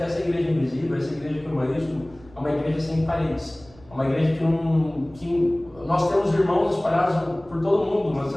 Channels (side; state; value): right; noise; rumble, 24 dB below the sound